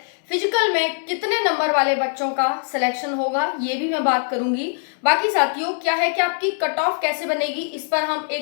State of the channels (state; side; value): silent; right; 62 dB below the other